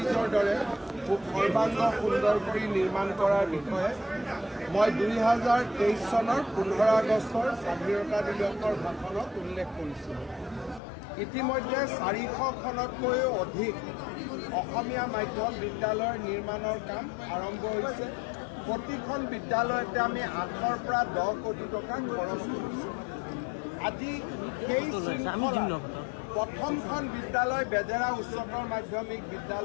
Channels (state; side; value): drops out; right; at 10.8 s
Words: দৰে খুব সৰ্বাংগ সুন্দৰ কৰি নিৰ্মাণ কৰাৰ বিষয়ে মই 2023 চনৰ 15 আগষ্টৰ স্বাধীনতা দিৱসৰ ভাষণত উল্লেখ কৰিছিলোঁ। ইতিমধ্যে 400খনতকৈও অধিক অসমীয়া মাধ্যম বিদ্যালয়ৰ নিৰ্মাণৰ কাম আৰম্ভ হৈছে। প্ৰতিখন বিদ্যালয়তে আমি 8ৰ পৰা 10 কোটি টকা খৰচ কৰিছোঁ। আজি সেই প্ৰথমখন বিদ্যালয় বেজেৰা উচ্চতৰ মাধ্যমিক